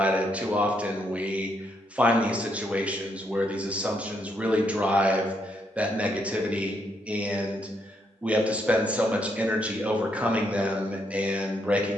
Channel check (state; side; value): normal; both; correlation 0.76